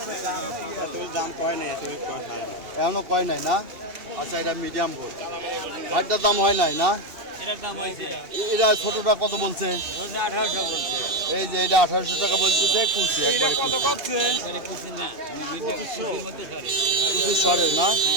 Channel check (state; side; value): late; left; 2.8 ms